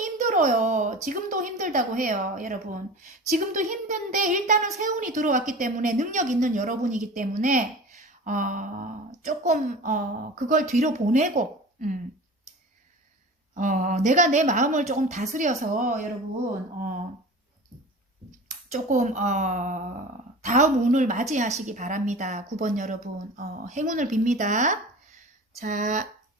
힘들어요. 지금도 힘들다고 해요, 여러분. 지금도 힘든데 일단은 세운이 들어왔기 때문에 능력 있는 여러분이기 때문에 조금 그걸 뒤로 보내고 내가 내 마음을 조금 다스려서 여러분 조금 다음 운을 맞이하시기 바랍니다. 9번 여러분 행운을 빕니다. 자,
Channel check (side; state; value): both; normal; correlation 0.36